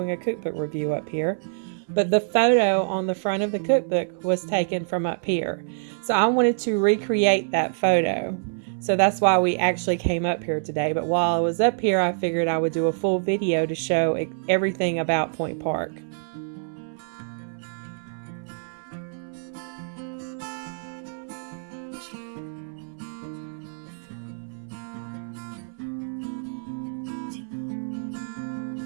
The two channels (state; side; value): silent; left; 61 dB below the other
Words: a cookbook review up here, but the photo on the front of the cookbook was taken from up here. So I wanted to recreate that photo. So that's why we actually came up here today. But while I was up here, I figured I would do a full video to show everything about Point Park.